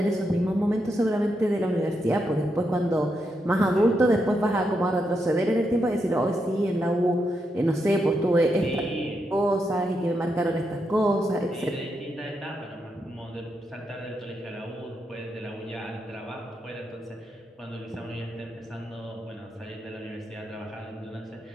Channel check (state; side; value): normal; both; correlation 0.83